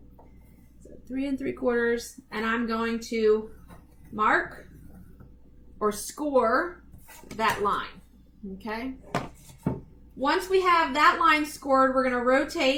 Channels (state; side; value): identical; both; correlation 1.00